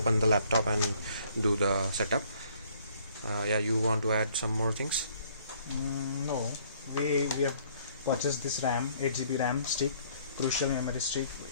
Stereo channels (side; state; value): both; inverted; correlation -0.62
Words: the laptop and do the setup. Yeah, you want to add some more things? No, we have purchased this RAM, 8 GB RAM stick, crucial memory stick